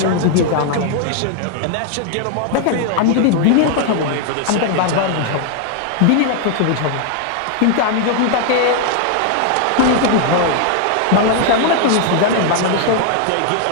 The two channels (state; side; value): different; both; correlation 0.00